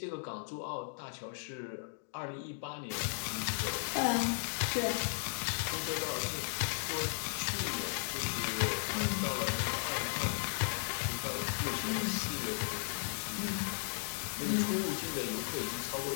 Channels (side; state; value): right; silent; digital silence